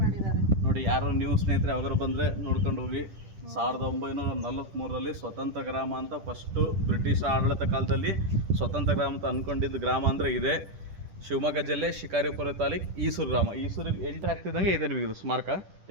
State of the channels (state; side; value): late; left; 10 ms